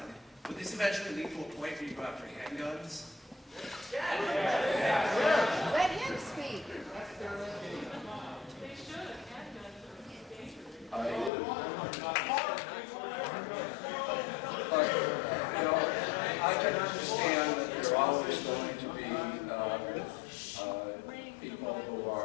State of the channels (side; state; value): right; drops out; at 11.3 s